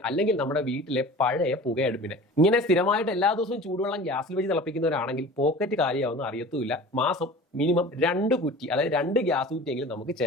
അല്ലെങ്കിൽ നമ്മുടെ വീട്ടിലെ പഴയ പുകയടുപ്പിനെ. ഇങ്ങനെ സ്ഥിരമായിട്ട് എല്ലാ ദിവസവും ചൂടുവെള്ളം ഗ്യാസിൽ വെച്ച് തിളപ്പിക്കുന്നവരാണെങ്കിൽ പോക്കറ്റ് കാര്യമാവുന്ന അറിയത്തുമില്ല. മാസം മിനിമം 2 കുറ്റി, അതായത് 2 ഗ്യാസ് കുറ്റിയെങ്കിലും നമുക്ക്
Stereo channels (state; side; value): normal; both; correlation 0.39